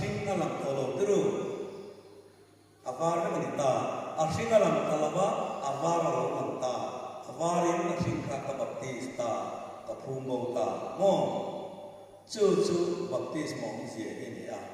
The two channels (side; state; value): both; identical; correlation 1.00